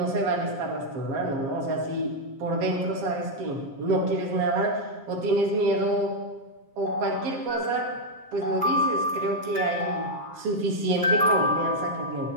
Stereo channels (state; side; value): late; left; 7.4 ms